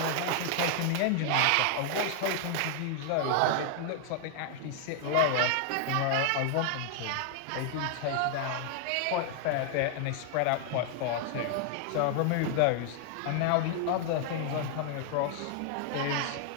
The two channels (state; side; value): different; both; correlation 0.00